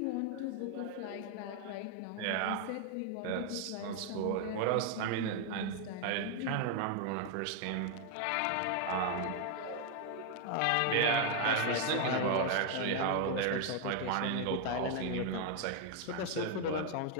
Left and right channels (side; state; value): both; different; correlation 0.00